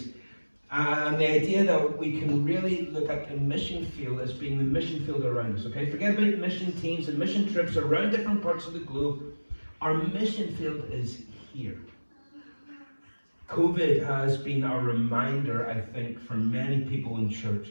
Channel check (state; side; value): inverted; both; correlation -1.00